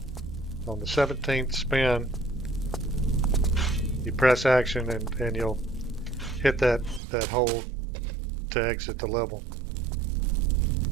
On the 17th spin, you press action and you'll hit that hole to exit the level.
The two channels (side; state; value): left; drops out; at 7.0 s